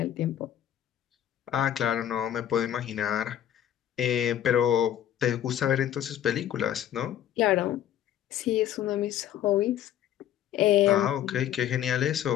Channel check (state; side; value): quieter; right; 11.1 dB